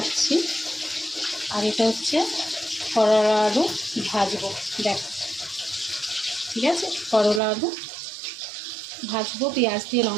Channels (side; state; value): left; drops out; at 7.4 s